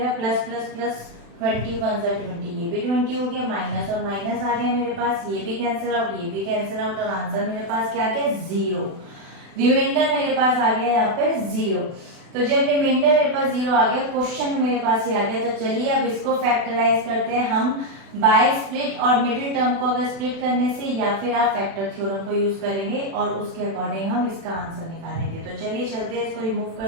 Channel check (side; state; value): left; late; 36 ms